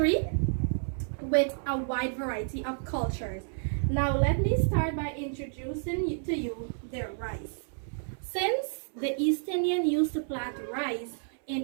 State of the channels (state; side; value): silent; left; 58 dB below the other